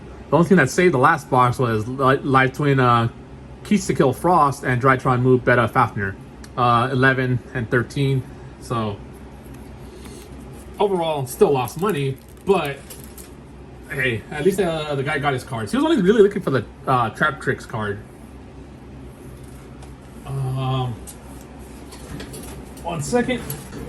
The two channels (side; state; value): both; identical; correlation 1.00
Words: The only thing that saved the last box was Live Twin Keys to Kill Frost and Drytron Move Beta Fafnir. 11 and 13. So overall still lost money, but hey, at least the guy got his cards. He was only really looking for the Trap Tricks card. 1 second.